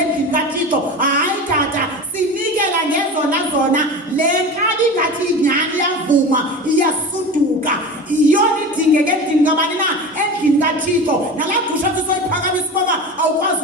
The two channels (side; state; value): both; normal; correlation 0.30